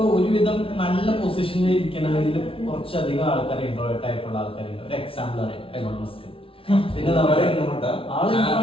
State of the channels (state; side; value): late; right; 0.26 ms